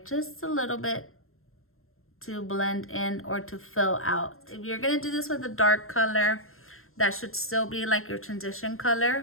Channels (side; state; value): right; late; 0.61 ms